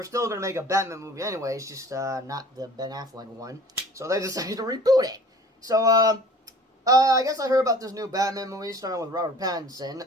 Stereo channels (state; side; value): normal; both; correlation 0.47